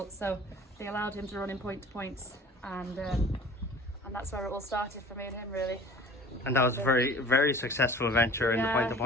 so they allowed him to run in point to points, and that's where it all started for me and him, really. And that was a very, very successful venture in the point to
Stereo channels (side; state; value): both; normal; correlation 0.44